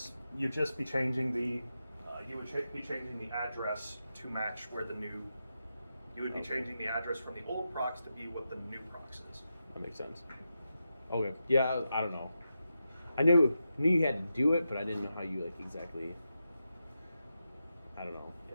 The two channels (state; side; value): inverted; both; correlation -0.88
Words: You'd just be changing the be changing the address to match where the new. You would be changing the address from the old procs to be what the new procs is. That makes sense. Okay. Yeah, I don't know. I knew you had to do it, but I didn't know how you like exactly. I don't know.